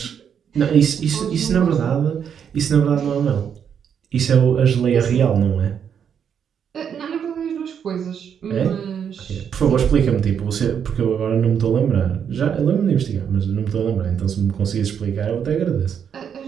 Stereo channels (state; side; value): quieter; left; 7.9 dB